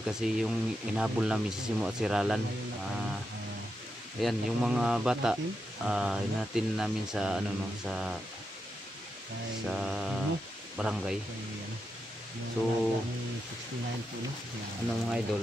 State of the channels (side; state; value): both; normal; correlation 0.86